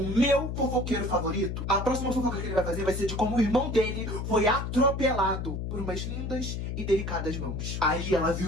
meu fofoqueiro favorito, a próxima fofoca que ele vai fazer vai ser de como o irmão dele foi atropelado por umas lindas e delicadas mãos. Aí ela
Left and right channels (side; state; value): left; noise; hum, 4 dB below the sound